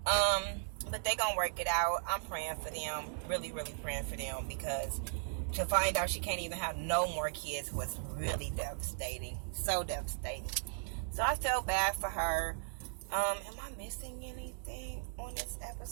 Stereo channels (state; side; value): silent; left; digital silence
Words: But they gonna work it out. I'm praying for them, really, really praying for them, because to find out she can't even have no more kids was really devastating. So devastating. So I felt bad for her. Am I missing anything on this